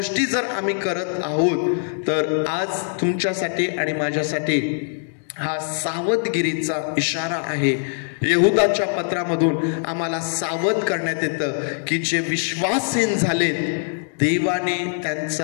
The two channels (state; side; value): silent; right; digital silence